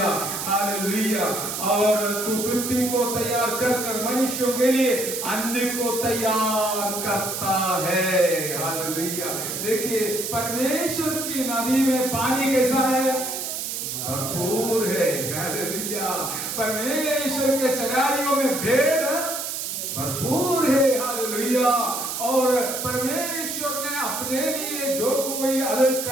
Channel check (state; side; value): noise; right; hiss, 4 dB below the sound